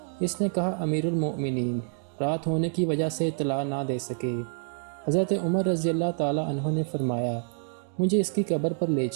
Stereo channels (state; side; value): silent; left; digital silence